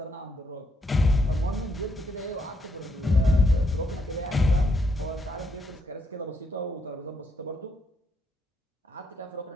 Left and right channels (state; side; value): normal; both; correlation 0.76